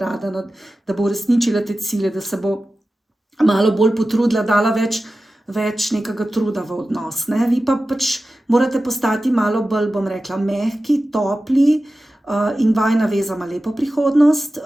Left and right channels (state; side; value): normal; both; correlation 0.94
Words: da bo uresničila te cilje, da se bo malo bolj potrudila, dala več nekega truda v odnos. Ne? Vi pa pač morate postati malo bolj, bom rekla, mehki, topli in vajina veza ima lepo prihodnost,